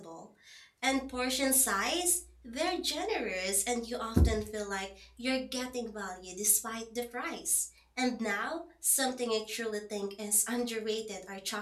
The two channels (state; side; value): identical; both; correlation 1.00